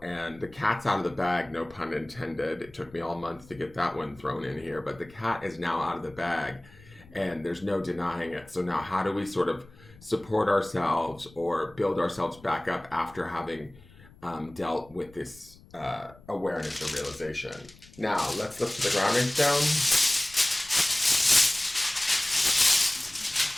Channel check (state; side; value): noise; left; rumble, 24 dB below the sound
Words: and the cat's out of the bag, no pun intended. It took me all month to get that one thrown in here, but the cat is now out of the bag, and there's no denying it. So now how do we sort of support ourselves or build ourselves back up after having dealt with this awareness or realization? Now, let's look to the grounding stone.